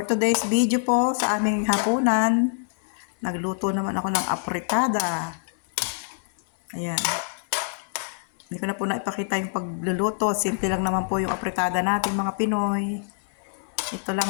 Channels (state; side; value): silent; right; 57 dB below the other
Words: today's video po sa aming hapunan, nagluto naman ako ng apritada. Ayan. Hindi ko na po naipakita yung pagluluto. Simple lang naman po yung apritada natin mga Pinoy. Ito lang,